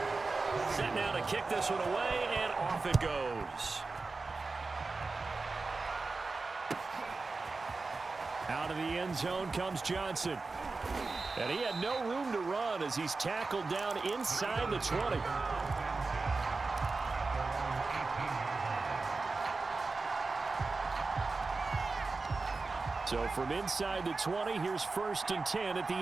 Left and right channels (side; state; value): left; quieter; 3.9 dB